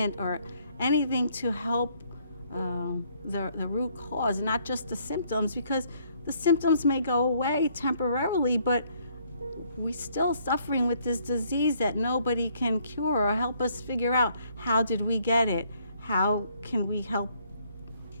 or anything to help the root cause, not just the symptoms, because the symptoms may go away temporarily, but we're still suffering with this disease that nobody can cure or help us figure out how did we get it? How can we help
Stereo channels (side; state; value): both; inverted; correlation -0.67